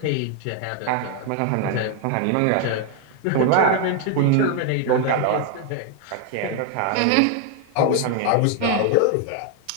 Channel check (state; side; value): different; both; correlation 0.00